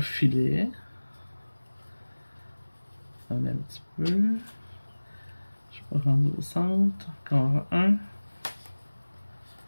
filet. On a un petit peu. Je vais rendre au centre. Encore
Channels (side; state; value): both; inverted; correlation -1.00